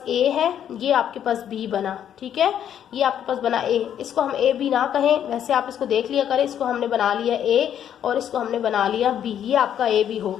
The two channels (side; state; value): right; quieter; 9.7 dB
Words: a है, ये आपके पास b बना। ठीक है, ये आपके पास बना a, इसको हम a b ना कहें, वैसे आप इसको देख लिया करें। इसको हमने बना लिया a और इसको हमने बना लिया b, ये आपका a b हो